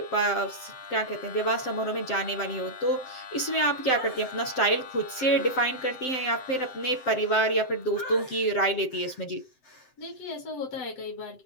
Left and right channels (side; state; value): right; late; 7.8 ms